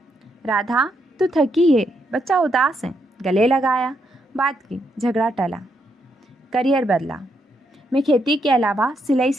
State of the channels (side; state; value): both; normal; correlation 0.78